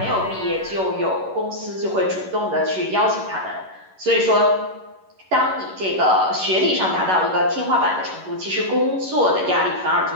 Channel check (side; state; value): left; late; 11 ms